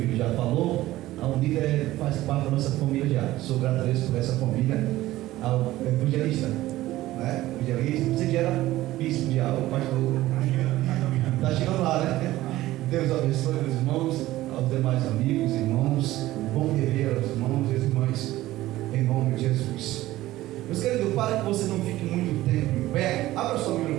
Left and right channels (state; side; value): quieter; left; 16.2 dB